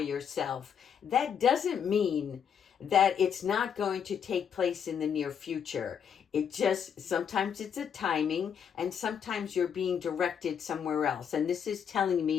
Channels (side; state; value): right; quieter; 7.8 dB